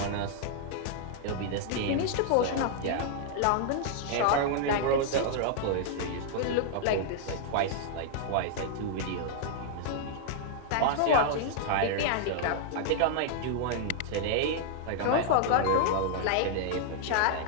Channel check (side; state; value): both; different; correlation -0.01